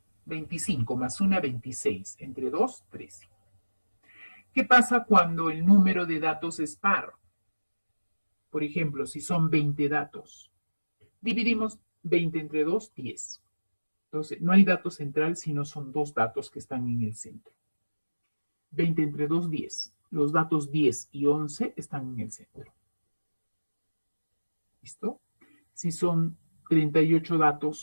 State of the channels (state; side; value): inverted; both; correlation -1.00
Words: $25 más 1, 26. Entre 2, 13. ¿Qué pasa cuando el número de datos es par? Por ejemplo, si son 20 datos, dividimos 20 entre 2, 10. Entonces, no hay dato central, sino son dos datos que están en el centro. 20 entre 2, 10. Los datos 10 y 11 están en el centro. ¿Listo? Si son 38